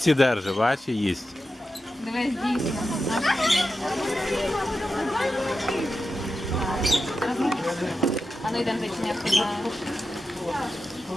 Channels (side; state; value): both; normal; correlation 0.90